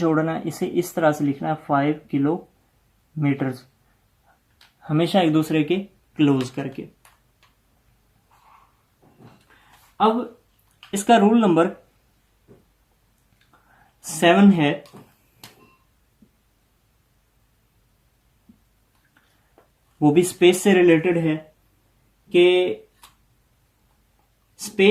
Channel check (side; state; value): both; identical; correlation 1.00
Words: है। इसे इस तरह से लिखना है 5 किलोमीटर, हमेशा एक दूसरे के क्लोज करके। अब इसका रूल नंबर 7 है, वो भी स्पेस से रिलेटेड है कि